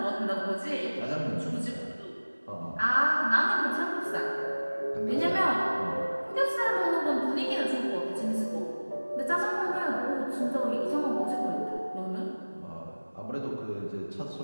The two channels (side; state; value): both; inverted; correlation -1.00